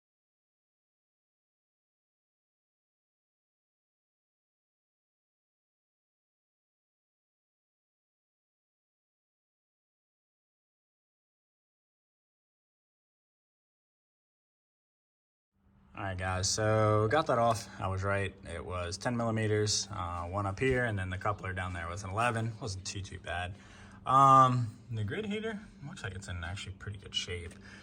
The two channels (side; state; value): both; identical; correlation 1.00